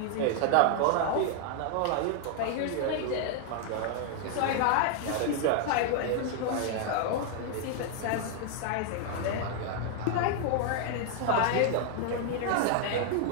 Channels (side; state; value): both; different; correlation 0.00